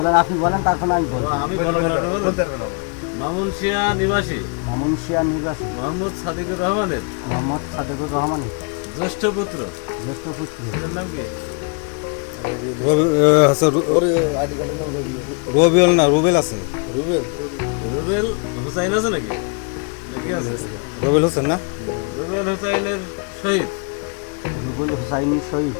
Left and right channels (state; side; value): quieter; right; 37.1 dB